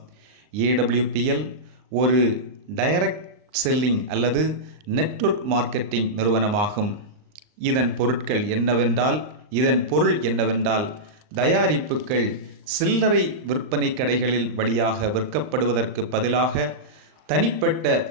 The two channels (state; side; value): late; left; 39 ms